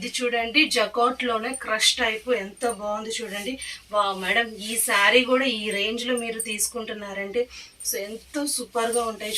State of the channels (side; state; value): both; identical; correlation 1.00